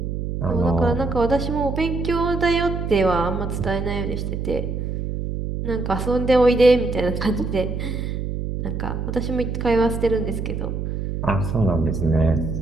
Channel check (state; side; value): noise; right; hum, 4 dB below the sound